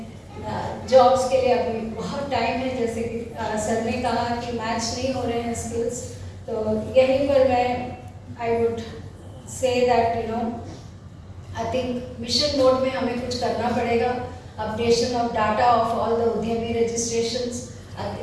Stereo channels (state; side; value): identical; both; correlation 1.00